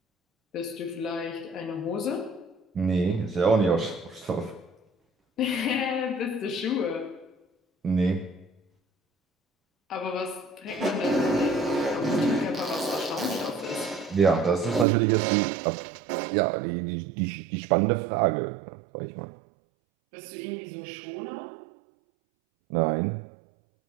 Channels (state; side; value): drops out; left; at 14.9 s